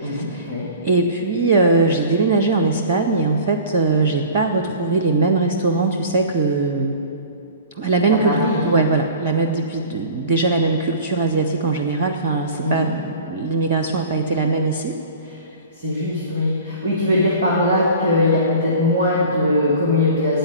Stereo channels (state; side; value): inverted; both; correlation -0.41